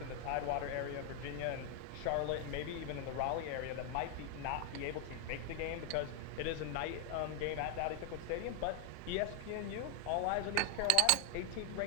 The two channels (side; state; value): both; different; correlation 0.00